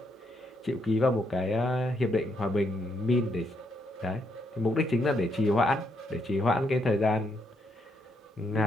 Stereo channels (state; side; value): normal; both; correlation 0.76